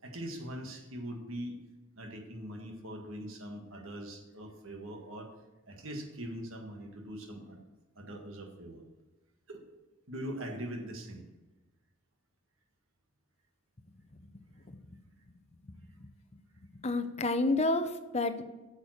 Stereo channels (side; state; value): both; normal; correlation 0.37